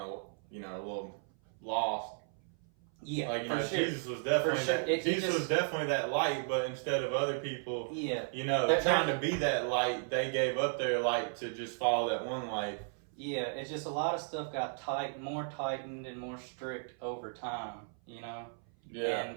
of a little lost. Yeah, like for sure. Jesus was definitely For sure. Jesus was definitely that light, but instead of other people, Yeah, trying to be that light, they gave up their light to just follow that one light. Yeah, it's just a lot of stuff got more tightened and more strict over time, Yeah.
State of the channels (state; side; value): silent; left; 55 dB below the other